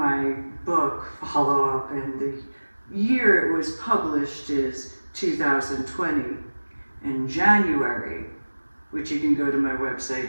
book follow-up, and the year it was published is 2020, in January, which you can go to my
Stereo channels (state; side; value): inverted; both; correlation -1.00